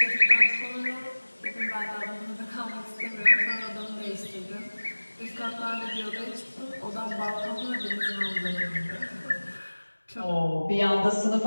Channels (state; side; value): inverted; both; correlation -1.00